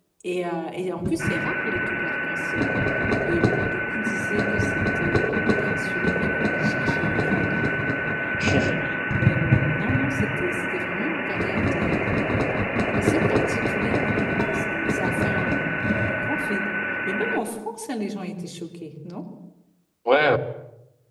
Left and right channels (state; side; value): identical; both; correlation 1.00